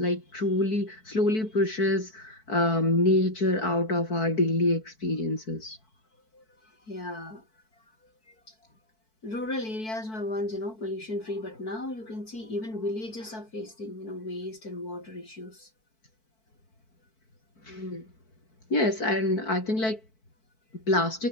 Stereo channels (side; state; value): right; late; 4.6 ms